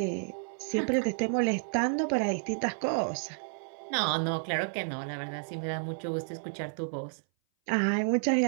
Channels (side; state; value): left; silent; 57 dB below the other